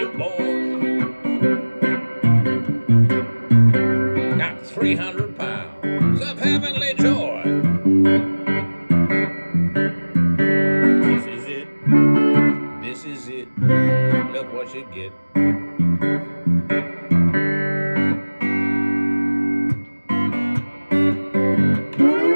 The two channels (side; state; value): both; inverted; correlation -1.00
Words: boy. Got 300 pounds of heavenly joy. This is it, this is it. Look what you get.